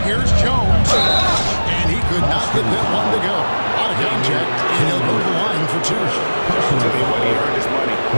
Here's Jones. And he could not get that one to go. Out of contact, and he'll go to the line for 2. Tell me what, he earned his money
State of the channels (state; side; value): inverted; both; correlation -1.00